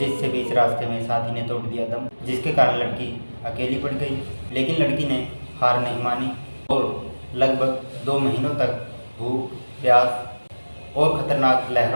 बीच रास्ते में साथी ने तोड़ दिया दम, जिसके कारण लड़की अकेली पड़ गई। लेकिन लड़की ने हार नहीं मानी और लगभग 2 महीनों तक भूख, प्यास और खतरनाक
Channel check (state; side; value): inverted; both; correlation -1.00